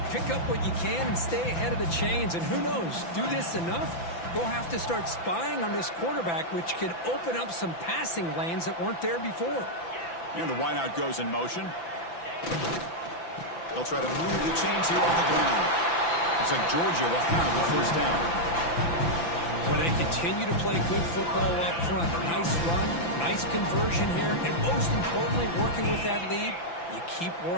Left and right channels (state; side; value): late; right; 5.9 ms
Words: pick up what you can and stay ahead of the chains. And who knows, do this enough, they'll have to start spying on this quarterback, which could open up some passing lanes that weren't there before. And the wideout goes in motion. They'll try to move the chains here off the ground. Looks like Georgia will have the first down. Well, they continue to play good football up front. Nice run, nice conversion here, and most importantly, working with that lead, you keep